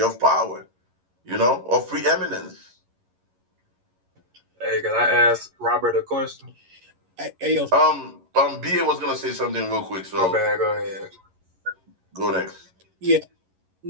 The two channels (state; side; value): late; left; 11 ms